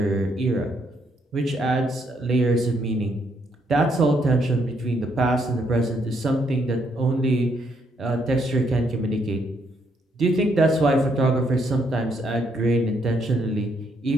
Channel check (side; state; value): both; normal; correlation 0.73